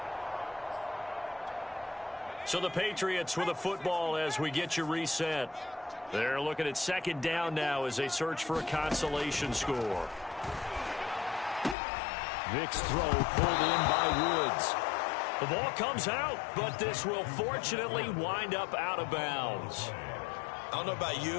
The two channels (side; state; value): right; drops out; at 11.8 s